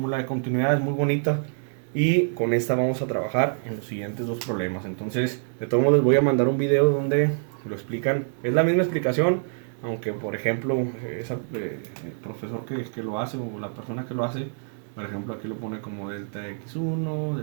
de continuidad, es muy bonita, y con esta vamos a trabajar en los siguientes dos problemas. Entonces, de todos modos, les voy a mandar un video donde lo explican. Es la misma explicación, aunque por ejemplo el profesor que lo hace, o la persona que lo hace, por ejemplo aquí lo pone como delta x1,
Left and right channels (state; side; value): silent; left; 61 dB below the other